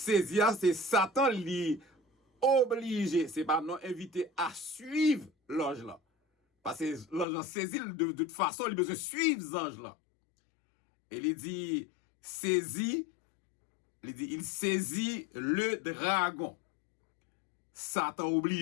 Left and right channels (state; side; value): drops out; right; at 7.2 s